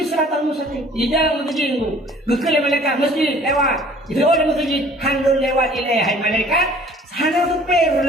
siratal mustaqim. Di dalam masjid itu, gekal malaikat masjid lewat. Itu oleh masjid handul lewat ilai hai malaikat. Hana supir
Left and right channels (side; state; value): both; normal; correlation 0.52